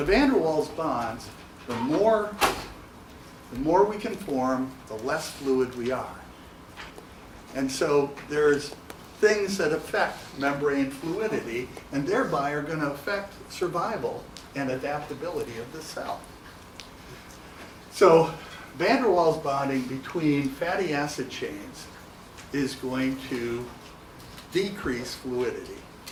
the van der Waals bonds, the more we can form, the less fluid we are. And so there's things that affect membrane fluidity and thereby are going to affect survival and adaptability of the cell. So van der Waals bonding between fatty acid chains is going to decrease fluidity.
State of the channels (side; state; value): both; identical; correlation 1.00